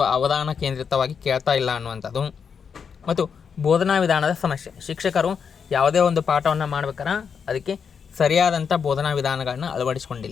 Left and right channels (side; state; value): right; quieter; 6.5 dB